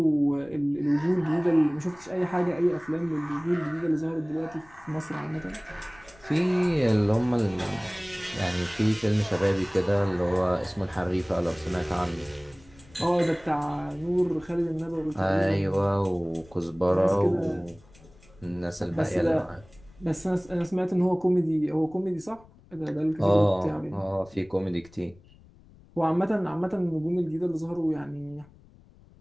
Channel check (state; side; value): noise; left; rumble, 25 dB below the sound